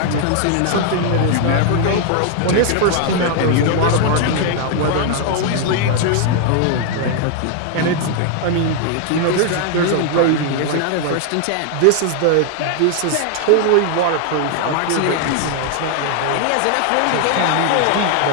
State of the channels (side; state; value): both; different; correlation 0.00